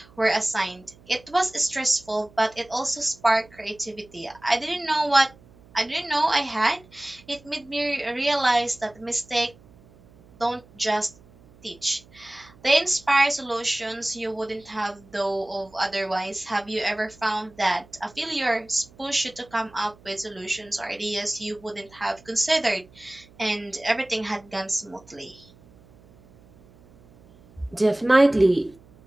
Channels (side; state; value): right; noise; hum, 26 dB below the sound